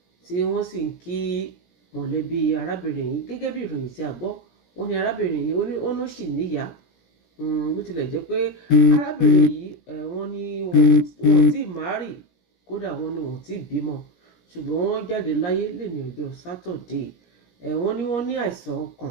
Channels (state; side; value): late; right; 17 ms